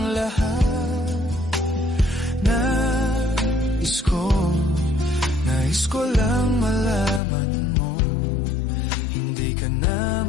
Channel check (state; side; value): drops out; right; at 7.2 s